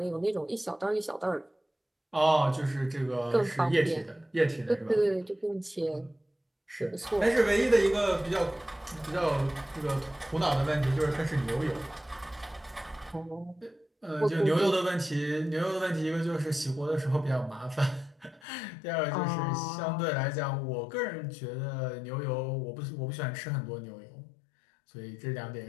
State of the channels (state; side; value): drops out; right; at 18.4 s